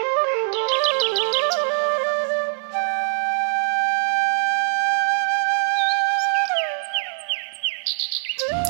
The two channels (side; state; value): left; silent; 64 dB below the other